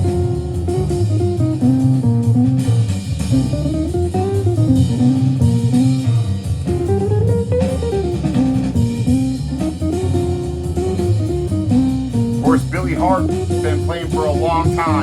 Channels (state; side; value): identical; both; correlation 1.00